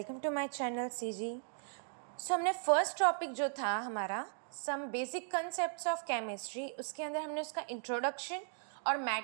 to my channel CG. हमने first topic जो था हमारा some basic concepts of chemistry, उसके अंदर हमने उसका इंट्रोडक्शन और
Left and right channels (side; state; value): left; silent; digital silence